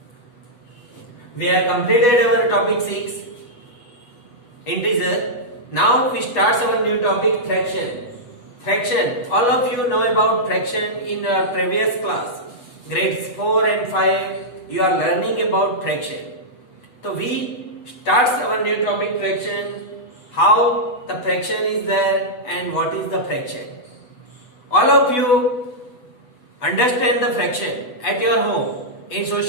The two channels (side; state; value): right; late; 8.1 ms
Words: We have completed our topic 6 integer. Now we start our new topic fraction. Fraction. All of you know about fraction in our previous class. Grades 4 and 5 you are learning about fraction. So we start our new topic fraction. How the fraction is there and what is the fraction. All of you understand the fraction at your home. In